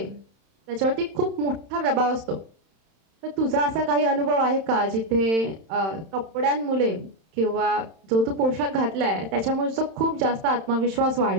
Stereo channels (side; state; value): left; late; 31 ms